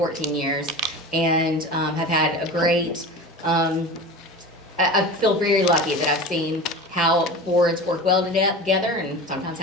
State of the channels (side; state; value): both; normal; correlation 0.32